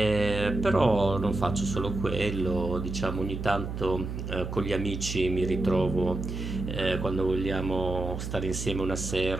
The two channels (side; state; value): right; noise; hum, 6 dB below the sound